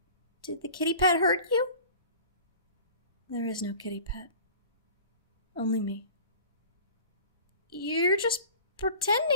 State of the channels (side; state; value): both; inverted; correlation -0.42